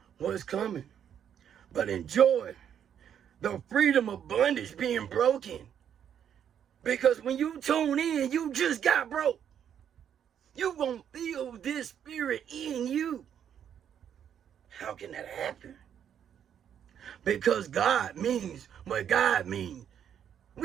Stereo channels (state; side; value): quieter; left; 9.0 dB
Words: what's coming. But enjoy the freedom of bondage being broken. Because when you tune in, you just got broke. You gonna feel this spirit in you. How can that happen? Because God means what God means.